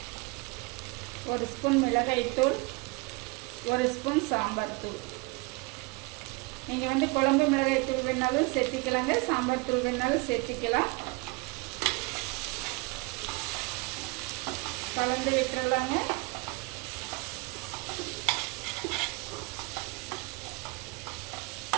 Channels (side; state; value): left; quieter; 26.4 dB